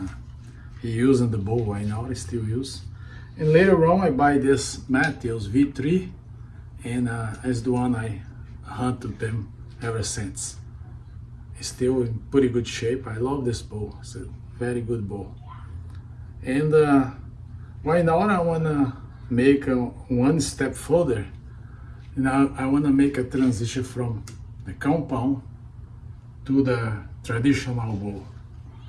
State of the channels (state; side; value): identical; both; correlation 1.00